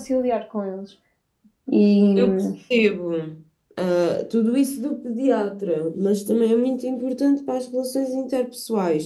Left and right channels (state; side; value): identical; both; correlation 1.00